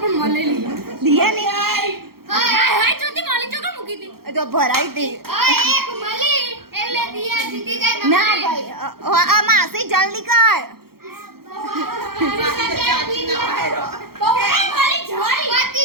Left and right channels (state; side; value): late; left; 0.94 ms